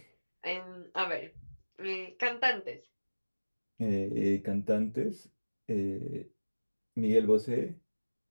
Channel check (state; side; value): inverted; both; correlation -1.00